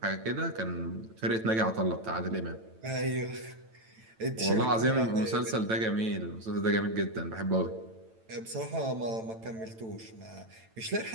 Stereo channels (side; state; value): left; late; 9.0 ms